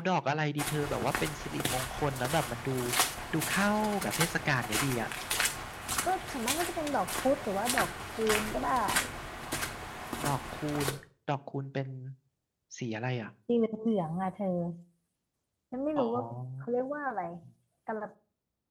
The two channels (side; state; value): both; identical; correlation 1.00